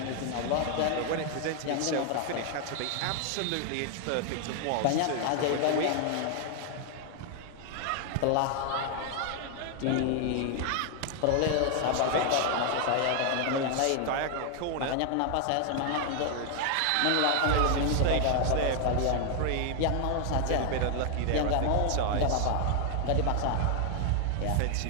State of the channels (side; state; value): both; different; correlation 0.00